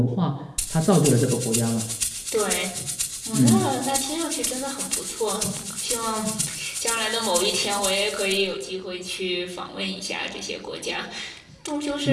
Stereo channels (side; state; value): both; identical; correlation 1.00